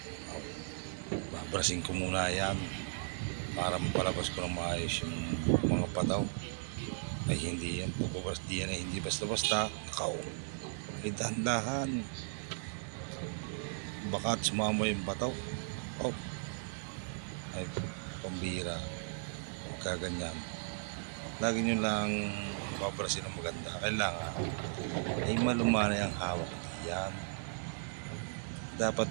babrasin ko muna yan para mapalabas ko ng maayos yung mga pataw. Ay hindi yung pagbabaras diyan ay hindi basta-basta. Nakaw. Ay dahan-dahan. Baka sumama yung bataw. Oh. Ay pambira. Huwag kaganyan. Lagi nyo lang babarasin ng maganda. Kailangan ay malumanay ang hawak diyan. Dapat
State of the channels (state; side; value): silent; left; digital silence